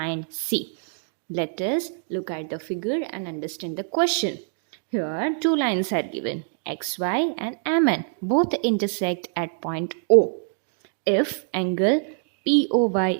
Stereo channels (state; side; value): silent; left; digital silence